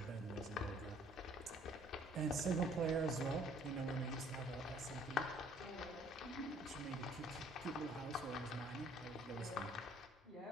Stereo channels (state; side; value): normal; both; correlation 0.58